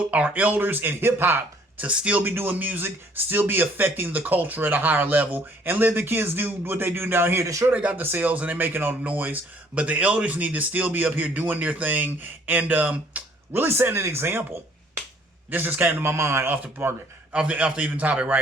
elders in hip hop to still be doing music, still be affecting the culture at a higher level, and let the kids do what they do down here. They're sure they got the sales and they're making all the noise, but the elders need to still be up here doing their thing and really setting an example. This just came to my mind off the even topic,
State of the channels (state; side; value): normal; both; correlation 0.60